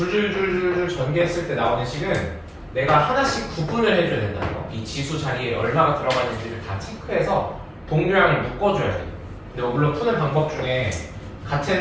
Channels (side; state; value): both; identical; correlation 1.00